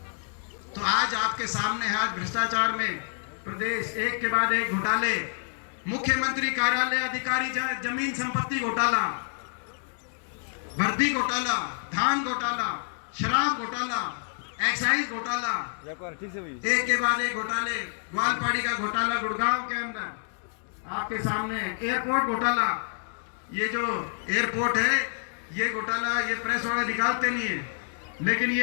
तो आज आपके सामने है, आज भ्रष्टाचार में प्रदेश एक के बाद एक घोटाले, मुख्यमंत्री कार्यालय अधिकारी जमीन संपत्ति घोटाला, भर्ती घोटाला, धान घोटाला, शराब घोटाला, एक्साइज घोटाला, एक के बाद एक घोटाले, ग्वालपाड़ी का घोटाला गुड़गांव के अंदर आपके सामने, एयरपोर्ट घोटाला, ये जो एयरपोर्ट है ये घोटाला, ये प्रेस वाले निकालते नहीं है, लेकिन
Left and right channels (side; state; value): right; silent; digital silence